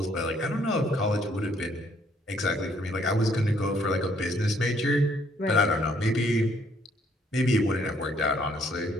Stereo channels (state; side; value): normal; both; correlation 0.66